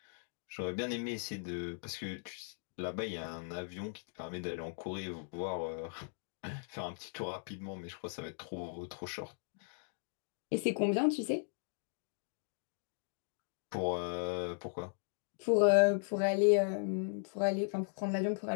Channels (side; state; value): right; silent; digital silence